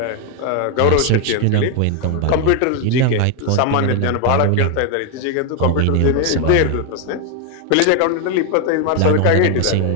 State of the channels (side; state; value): both; different; correlation 0.01